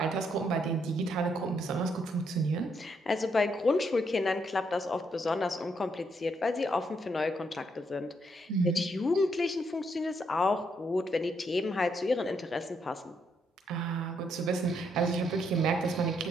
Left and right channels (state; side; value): normal; both; correlation 0.75